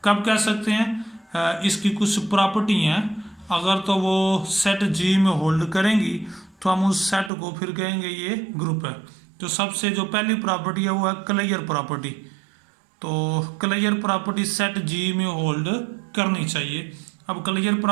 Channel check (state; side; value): drops out; left; at 7.3 s